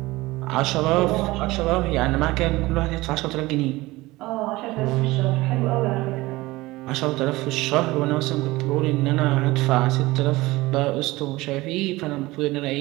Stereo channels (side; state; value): left; quieter; 19.9 dB